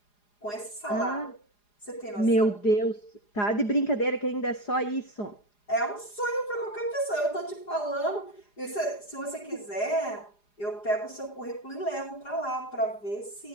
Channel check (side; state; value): right; late; 4.9 ms